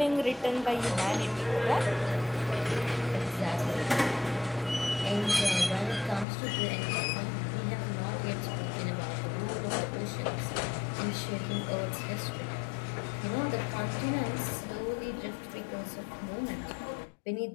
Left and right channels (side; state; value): right; drops out; at 6.2 s